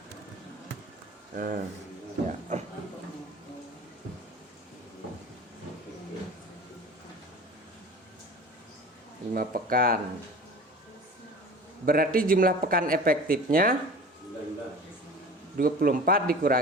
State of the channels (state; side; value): normal; both; correlation 0.39